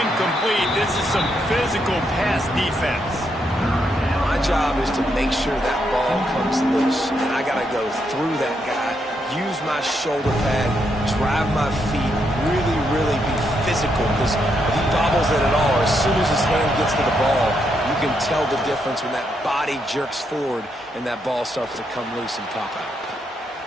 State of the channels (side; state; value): both; normal; correlation 0.79